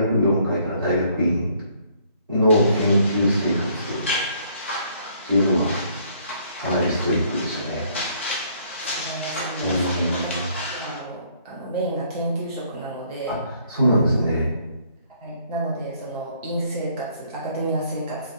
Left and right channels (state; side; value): inverted; both; correlation -0.64